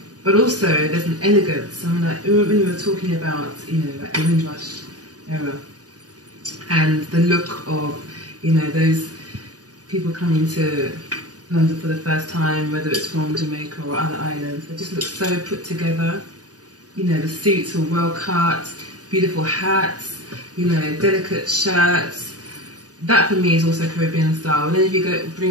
but also there's an elegance. I mean, like when we were talking about, like the Windrush era and the look of, those people coming to London for the first time, whether it's from Jamaica or other islands, it just looks so put together. The suits are well cut, beautiful hats, delicate shirts. That for me is also Caribbean style. And then if you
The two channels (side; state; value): left; late; 0.68 ms